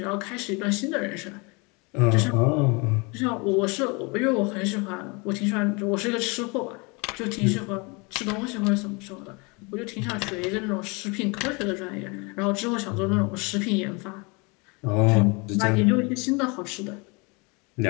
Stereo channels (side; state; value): right; quieter; 29.2 dB